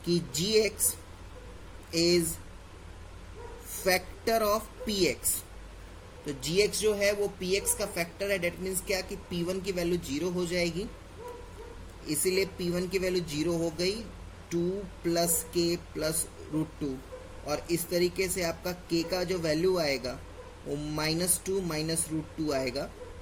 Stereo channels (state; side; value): identical; both; correlation 1.00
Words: कि gx is factor of px। तो gx जो है वो px का फैक्टर है। डेट मीन्स क्या कि p1 की वैल्यू 0 हो जाएगी, इसीलिए p1 की वैल्यू 0 हो गई, 2 प्लस k प्लस √2। और इस तरीके से आपका k का जो वैल्यू आएगा वो -2 माइनस √2 आएगा।